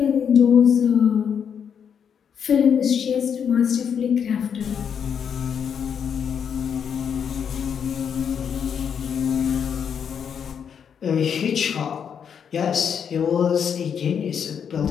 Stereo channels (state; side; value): quieter; right; 7.6 dB